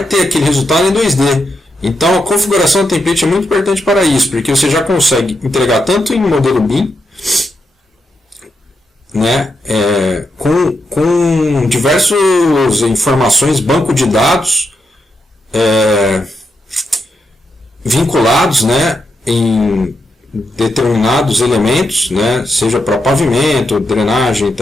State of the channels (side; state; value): both; normal; correlation 0.84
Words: ter aquele resultado em 2D. Então a configuração do template é muito importante para isso, porque você já consegue entregar tanto em modelo BIM, né, com diversas informações, banco de dados vinculados, né, em determinados elementos, né, seja para pavimento, drenagem,